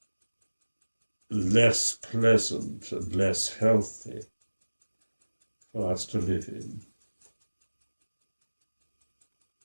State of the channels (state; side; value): inverted; both; correlation -1.00